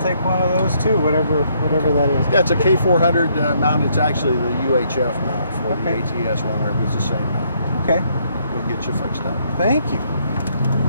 take one of those too, whatever that is. Yeah, it's a K400 mount. It's actually the UHF mount for the ATS one, but it's the same mount. Okay. We'll get you fixed up. Thank you.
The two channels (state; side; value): inverted; both; correlation -0.70